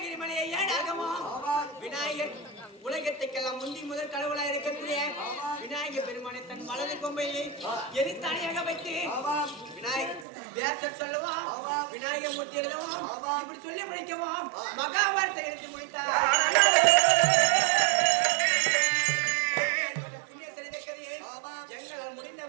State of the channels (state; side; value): drops out; left; at 10.2 s